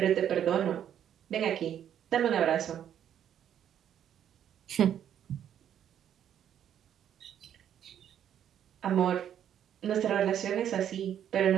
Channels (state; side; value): quieter; left; 9.8 dB